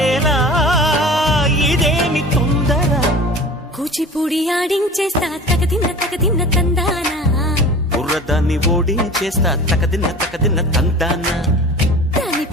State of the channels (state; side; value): normal; both; correlation 0.39